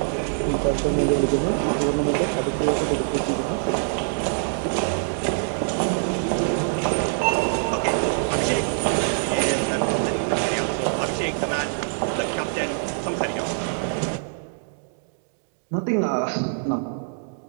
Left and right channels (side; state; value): left; silent; digital silence